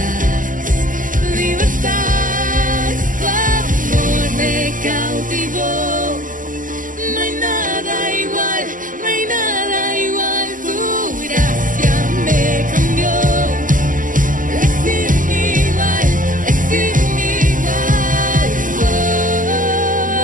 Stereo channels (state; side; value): late; left; 0.38 ms